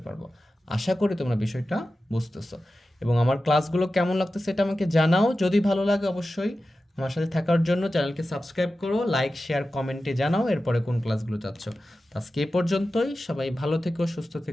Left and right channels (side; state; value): both; normal; correlation 0.93